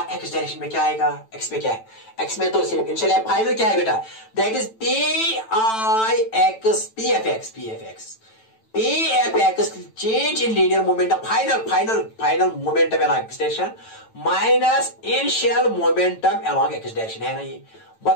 एक्स डायरेक्शन में क्या आएगा, एक्स में क्या है, एक्स में तो सिर्फ इनिशियल है, फाइनल क्या है बेटा, that is PIX, PFX change in linear momentum, final momentum along X direction minus initial momentum along X direction, है ना। ये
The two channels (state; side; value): late; right; 9.0 ms